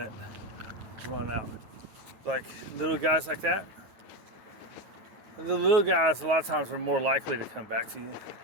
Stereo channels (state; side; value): late; left; 9.5 ms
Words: run out. Like little guys like that. The little guys a lot of times are more likely to come back to you